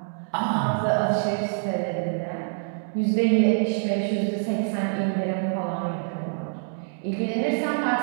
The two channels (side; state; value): left; silent; digital silence